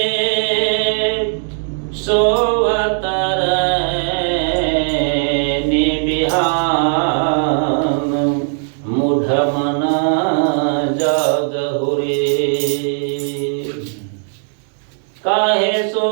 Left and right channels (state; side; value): silent; left; digital silence